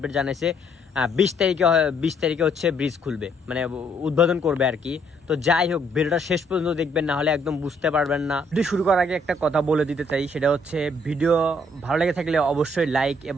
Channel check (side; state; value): both; normal; correlation 0.68